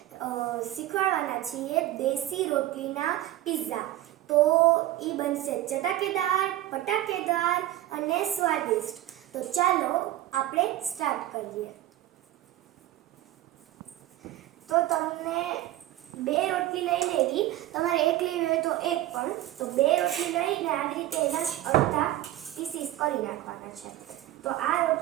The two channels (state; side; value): quieter; left; 14.5 dB